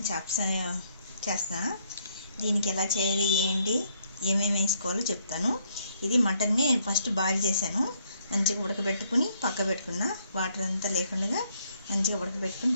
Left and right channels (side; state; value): both; inverted; correlation -0.69